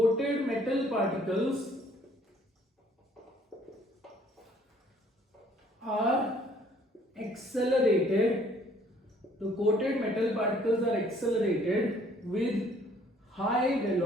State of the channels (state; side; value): normal; both; correlation 0.60